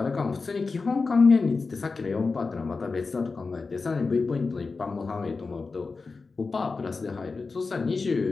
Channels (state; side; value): quieter; right; 4.2 dB